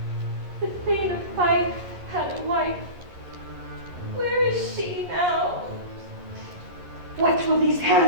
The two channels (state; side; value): late; left; 11 ms